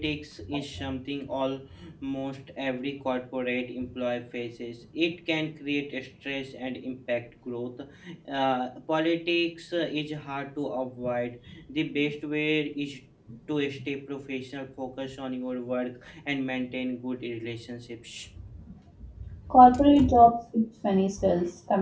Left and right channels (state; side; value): identical; both; correlation 1.00